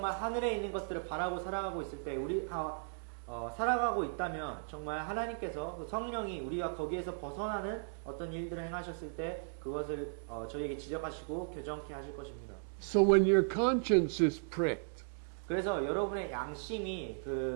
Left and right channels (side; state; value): left; silent; digital silence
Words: 하늘에 있는 것들을 바라고 살아가고 있을 때 살아가고 있다면 정말 하나님께서 그 성령이 우리가 거기에서 벗어나는 어떤 일들을 행하셨을 때 그것을 저희에게 지적하시고 교정케 하실 것입니다. So when your conscience is pricked, 그래서 여러분의 양심이